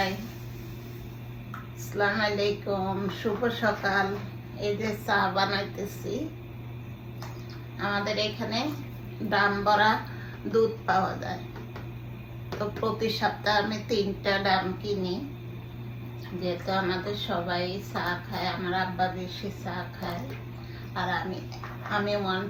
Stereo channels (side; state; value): both; identical; correlation 1.00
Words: আসসালামু আলাইকুম, শুভ সকাল। এই যে চা বানাইতেছি। আমাদের এখানে দাম ভরা দুধ পাওয়া যায়, তো প্রতি সপ্তাহে আমি 3টা ডাম কিনি, যেহেতু আমাদের সবাই চা খায়। আমার আব্বা বেশি চা খায়, আর আমি ওয়ান